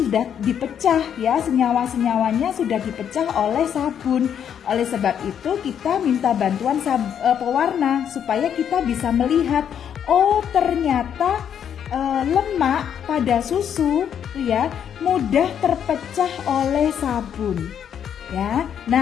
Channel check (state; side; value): quieter; right; 8.7 dB